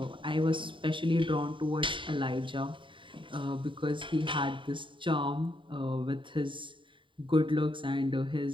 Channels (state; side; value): late; left; 0.24 ms